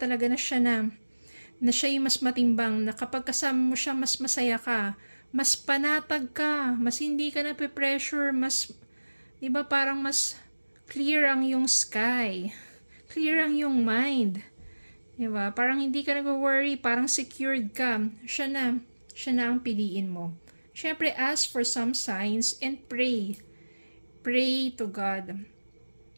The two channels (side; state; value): both; inverted; correlation -1.00